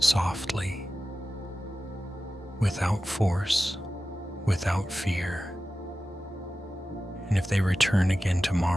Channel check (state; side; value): normal; both; correlation 0.95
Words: without force, without fear. And if they return again